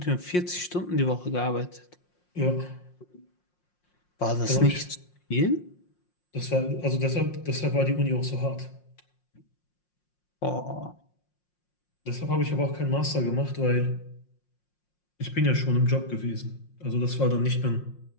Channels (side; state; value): right; late; 5.6 ms